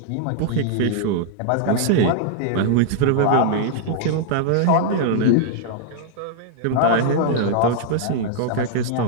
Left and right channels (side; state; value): both; different; correlation -0.01